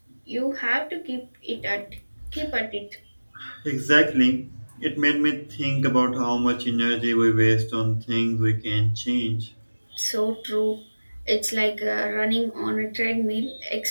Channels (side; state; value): both; inverted; correlation -1.00